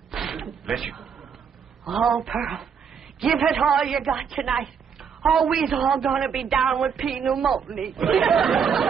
Bless you. Oh, Pearl, give it all you got tonight. Oh, we's all gonna be down with pneumonia.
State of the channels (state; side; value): quieter; left; 6.8 dB